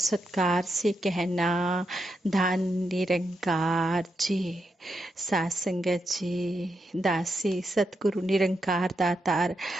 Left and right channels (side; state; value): both; normal; correlation 0.84